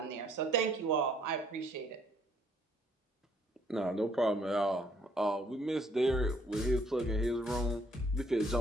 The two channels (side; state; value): both; normal; correlation 0.65